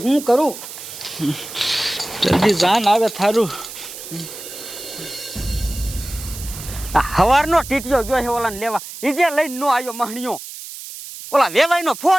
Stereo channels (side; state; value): right; noise; hiss, 12 dB below the sound